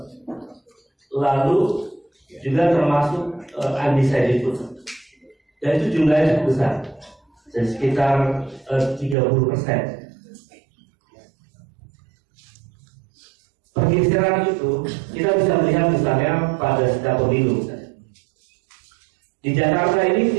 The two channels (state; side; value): drops out; left; at 9.2 s